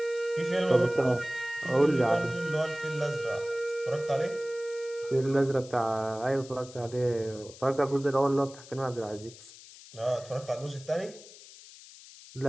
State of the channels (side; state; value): left; noise; hiss, 19 dB below the sound